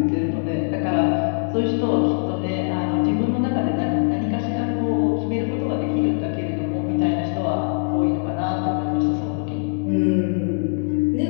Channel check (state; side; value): silent; right; digital silence